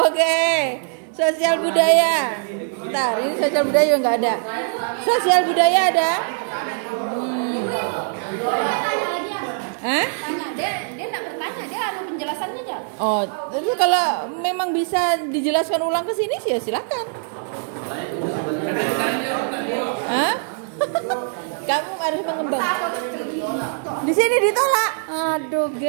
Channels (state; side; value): silent; left; digital silence